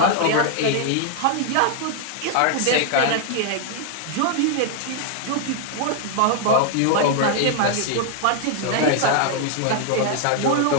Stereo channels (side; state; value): both; different; correlation 0.00